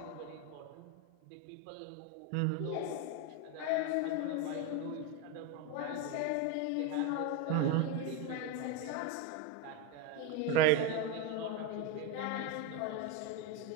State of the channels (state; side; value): different; both; correlation 0.03